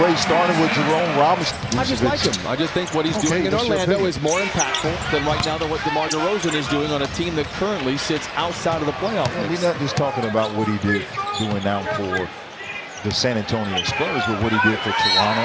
started with Jerome Robinson. I just like him. I just think what he's doing in Orlando is more impactful than right now than what DeMar DeRozan is doing on a team that currently sits outside of the playoff mix. We're not just talking about what he did doing now for the San Antonio Spurs, but what he did for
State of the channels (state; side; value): identical; both; correlation 1.00